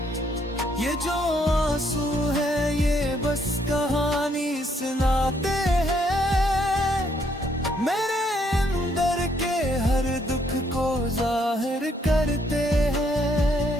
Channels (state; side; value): normal; both; correlation 0.71